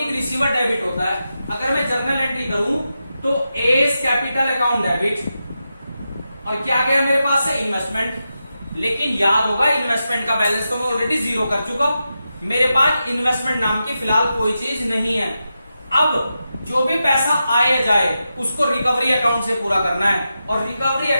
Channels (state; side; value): inverted; both; correlation -0.89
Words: रिसीवर डेबिट होता है। अगर मैं जर्नल एंट्री करूं तो एस कैपिटल अकाउंट डेबिट, और क्या गया मेरे पास से? इन्वेस्टमेंट। लेकिन याद होगा इन्वेस्टमेंट का बैलेंस तो मैं ऑलरेडी 0 कर चुका, मेरे पास इन्वेस्टमेंट नाम की फिलहाल कोई चीज नहीं है। अब जो भी पैसा आए जाए उसको रिकवरी अकाउंट से पूरा करना है, और रिकवरी